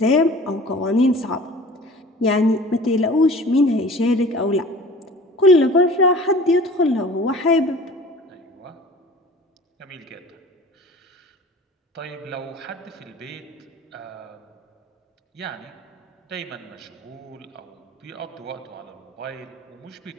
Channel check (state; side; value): normal; both; correlation 0.43